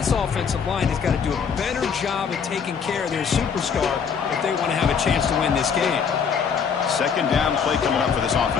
offensive line has got to do a better job of taking care of their superstar if they want to have a chance to win this game. Second down play coming up for this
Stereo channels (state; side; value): quieter; right; 6.6 dB